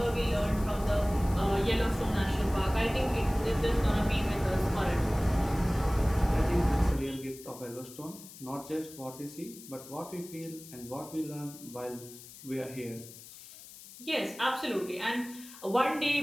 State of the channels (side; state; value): left; noise; hiss, 17 dB below the sound